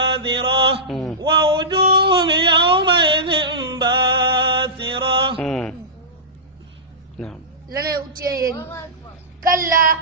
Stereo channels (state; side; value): normal; both; correlation -0.17